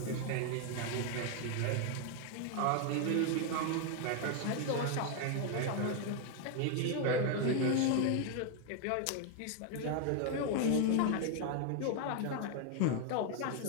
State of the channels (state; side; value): different; both; correlation 0.00